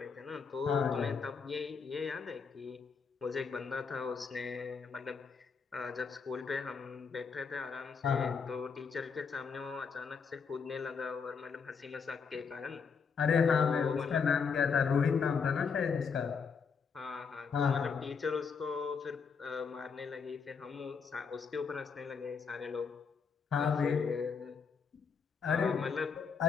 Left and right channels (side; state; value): right; quieter; 5.7 dB